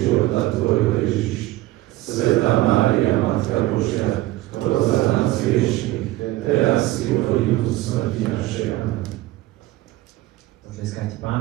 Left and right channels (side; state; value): left; quieter; 17.2 dB